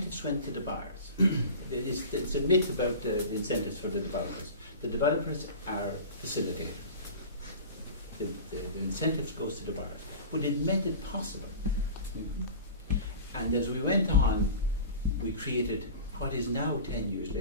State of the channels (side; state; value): both; inverted; correlation -0.35